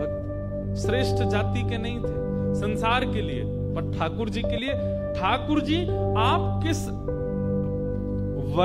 श्रेष्ठ जाति के नहीं थे संसार के लिए, पर ठाकुर जी के लिए। ठाकुर जी आप किस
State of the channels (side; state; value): both; identical; correlation 1.00